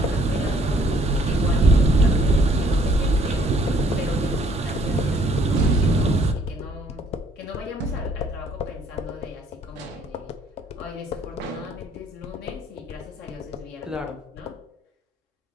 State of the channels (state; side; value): normal; both; correlation 0.63